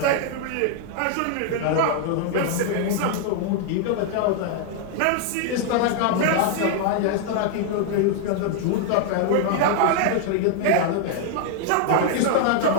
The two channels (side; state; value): both; different; correlation 0.00